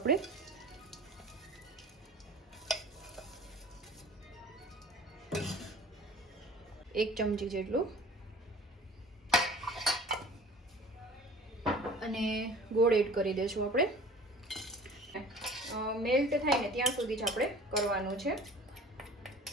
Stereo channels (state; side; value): normal; both; correlation 0.44